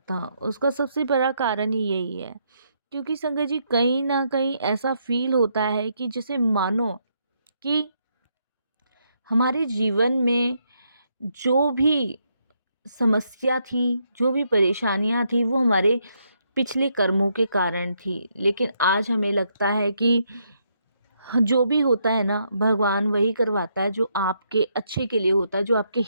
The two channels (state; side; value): inverted; both; correlation -0.76